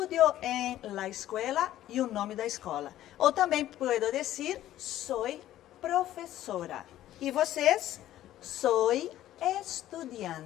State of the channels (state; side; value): quieter; right; 13.3 dB